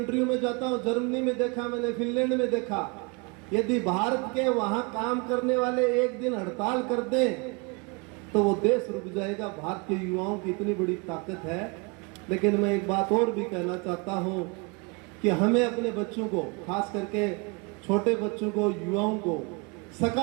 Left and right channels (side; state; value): left; quieter; 30.2 dB